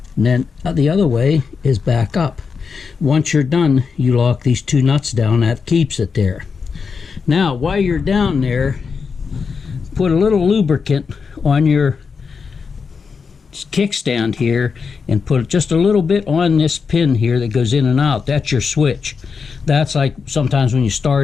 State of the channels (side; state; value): right; quieter; 5.5 dB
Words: And then the other way is back up. Once you're done, you lock these two nuts down. That keeps it there. Now, while you're down there, put a little lubricant on your kickstand here and put just a little bit on this pin here that goes in and out. That's your switch. That's like sometimes when you